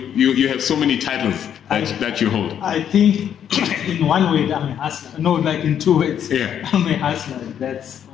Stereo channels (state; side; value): quieter; right; 9.2 dB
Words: have so many titles that you hold. I think in one way I'm a hustler. No, like in two ways. Yeah. I'm a hustler. That's